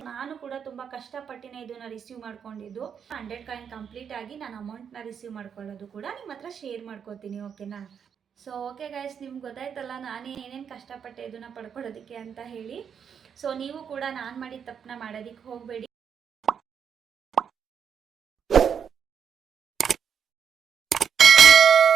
ನಾನು ಕೂಡ ತುಂಬ ಕಷ್ಟಪಟ್ಟಿನೇ ಇದನ್ನು ರಿಸೀವ್ ಮಾಡ್ಕೊಂಡಿದ್ದು. 100 ಕಾಯಿನ್ ಕಂಪ್ಲೀಟ್ ಆಗಿ ನಾನು ಅಮೌಂಟ್ನ ರಿಸೀವ್ ಮಾಡ್ಕೊಳ್ಳೋದು ಕೂಡ ನಿಮ್ಮ ಹತ್ರ ಶೇರ್ ಮಾಡ್ಕೋತೀನಿ, ಓಕೆನಾ? ಸೊ ಓಕೆ ಗೈಸ್, ನಿಮ್ಗೆ ಗೊತ್ತಾಯ್ತಲ್ಲ ನಾನು ಏನೇನು ಕಷ್ಟಪಟ್ಟೆ ಇದನ್ನು ಪಡ್ಕೊಳ್ಳೋದಕ್ಕೆ ಅಂತ ಹೇಳಿ. ಸೊ ನೀವು ಕೂಡ ನಾನು ಮಾಡಿದ ತಪ್ಪನ್ನ ಮಾಡೋದಕ್ಕೆ ಹೋಗಬೇಡಿ.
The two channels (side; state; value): left; quieter; 7.5 dB